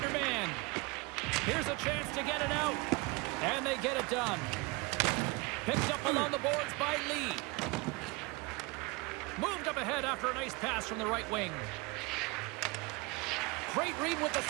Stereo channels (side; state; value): left; quieter; 25.9 dB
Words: Here's a chance to get it out. And they get it done. Picked up along the boards by Lee. Moved up ahead after a nice pass from the right wing. Great read with the